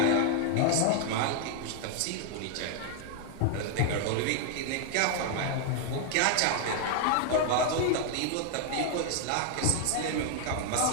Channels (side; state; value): both; different; correlation 0.00